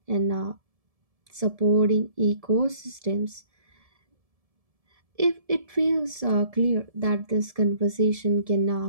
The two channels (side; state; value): left; late; 1.7 ms